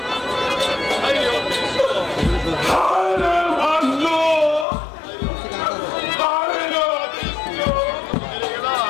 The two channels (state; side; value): drops out; right; at 4.7 s